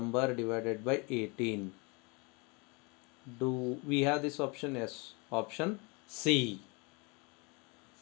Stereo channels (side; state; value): right; quieter; 29.6 dB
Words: divided by 18. Do we have this option? Yes, option C.